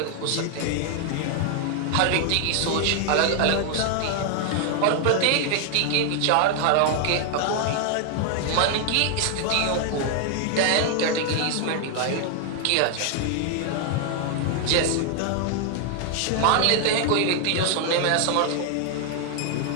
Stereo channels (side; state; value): both; different; correlation 0.00